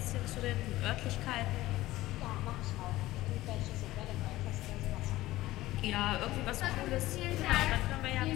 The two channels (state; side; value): quieter; right; 16.9 dB